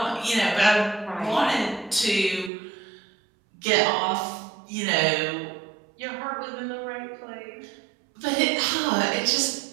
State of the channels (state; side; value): drops out; left; at 2.5 s